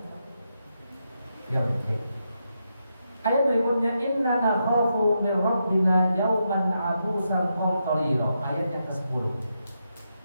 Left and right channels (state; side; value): inverted; both; correlation -0.83